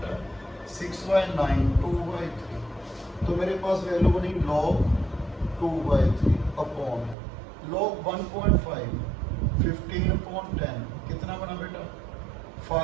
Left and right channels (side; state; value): left; drops out; at 7.2 s